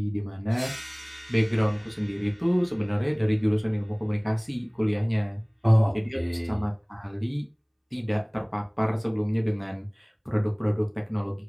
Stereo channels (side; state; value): both; identical; correlation 1.00